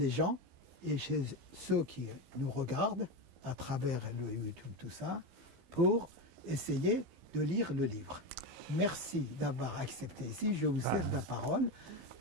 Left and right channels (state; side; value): late; left; 15 ms